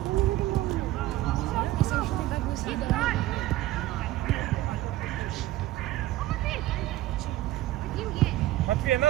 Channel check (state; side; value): quieter; left; 15.6 dB